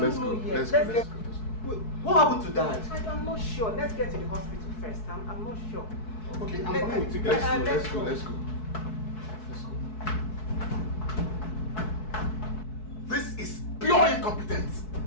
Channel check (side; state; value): right; late; 4.6 ms